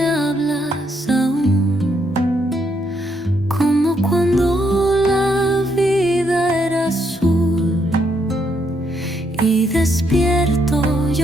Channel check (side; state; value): both; normal; correlation 0.75